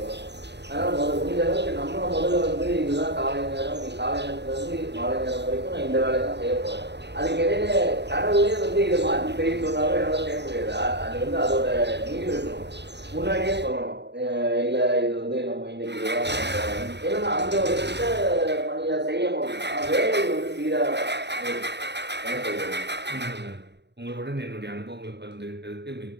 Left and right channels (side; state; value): left; late; 0.50 ms